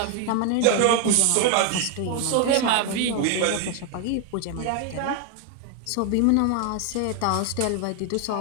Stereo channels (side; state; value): both; different; correlation 0.01